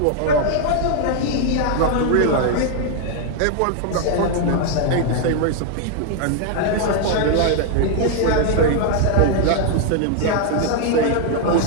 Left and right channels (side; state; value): both; different; correlation 0.00